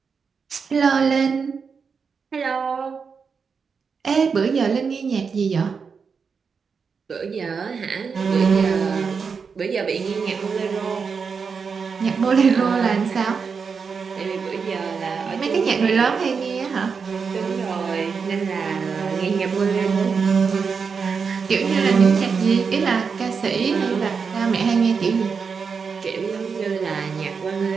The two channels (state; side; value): quieter; left; 5.6 dB